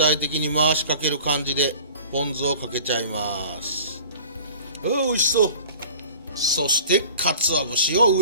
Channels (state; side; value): inverted; both; correlation -0.43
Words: 的に回しかける感じでポン酢をかけちゃいます。美味しそう。そして鰹節を